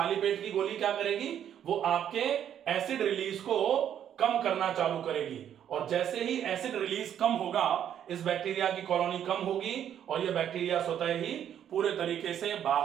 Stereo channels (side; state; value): left; quieter; 9.8 dB